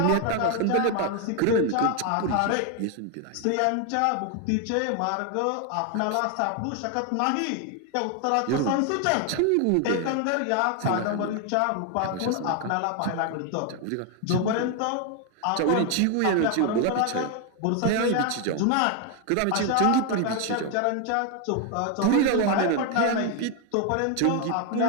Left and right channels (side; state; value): both; different; correlation 0.01